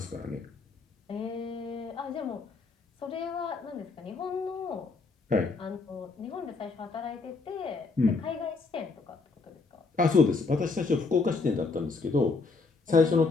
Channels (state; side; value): quieter; right; 4.1 dB